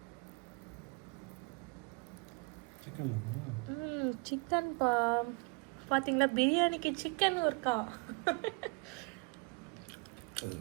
சிக்கன் பா. பாத்தீங்களா, பிரியாணிக்கு சிக்கன் இருக்கா?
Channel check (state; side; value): quieter; left; 30.7 dB